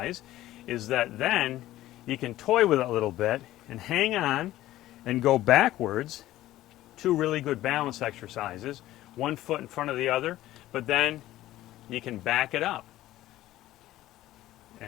is that then you can toy with it a little bit and hang on and go backwards. Two really good balance exercises, 1 foot in front of the other, but then you can back it up.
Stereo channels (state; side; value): quieter; right; 15.0 dB